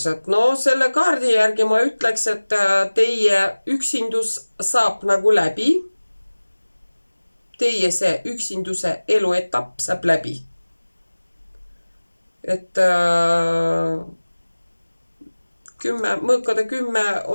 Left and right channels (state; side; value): inverted; both; correlation -1.00